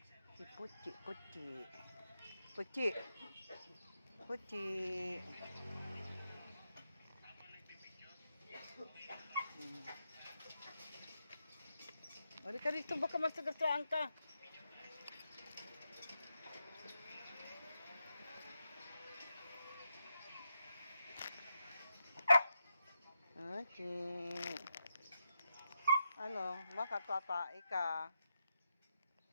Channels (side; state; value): both; inverted; correlation -0.84